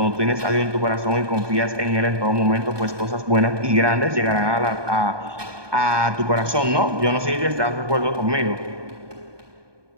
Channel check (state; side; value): late; left; 1.2 ms